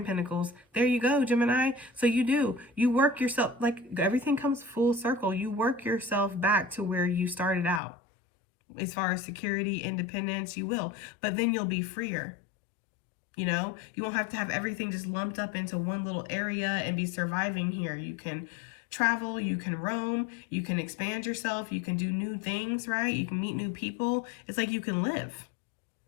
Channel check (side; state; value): right; drops out; at 7.8 s